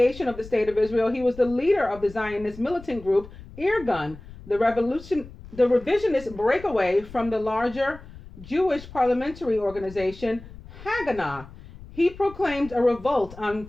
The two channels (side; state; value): left; noise; rumble, 17 dB below the sound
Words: of the State of Israel, he was the leader of the Zionist militant group Irgun, the revisionist breakaway from the larger Jewish parliamentary organization Haganah. He proclaimed a revolt